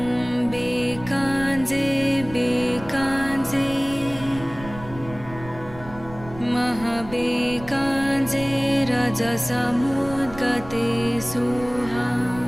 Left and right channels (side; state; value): right; noise; rumble, 16 dB below the sound